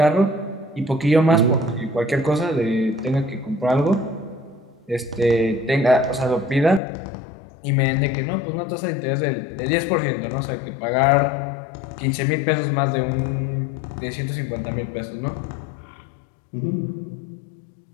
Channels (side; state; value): right; drops out; at 6.8 s